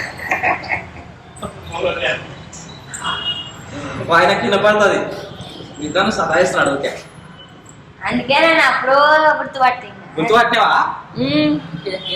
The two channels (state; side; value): identical; both; correlation 1.00